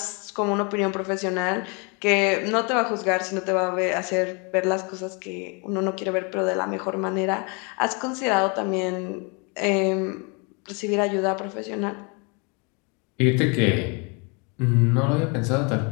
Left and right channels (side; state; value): right; quieter; 32.8 dB